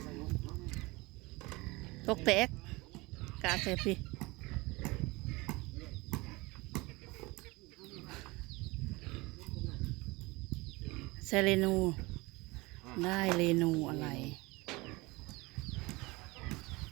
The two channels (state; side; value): quieter; left; 23.4 dB